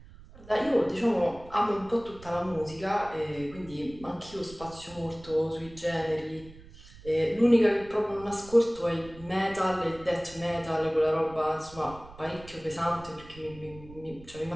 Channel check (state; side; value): noise; right; rumble, 20 dB below the sound